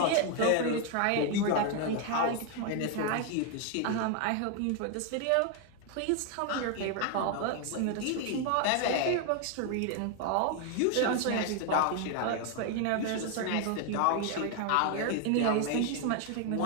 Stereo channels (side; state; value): both; different; correlation 0.01